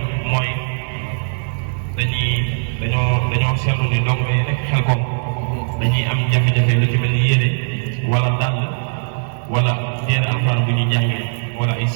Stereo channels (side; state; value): left; silent; digital silence